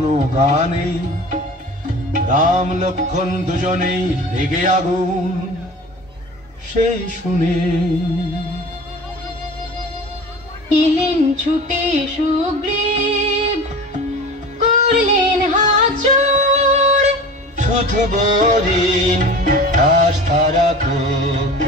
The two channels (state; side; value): normal; both; correlation 0.37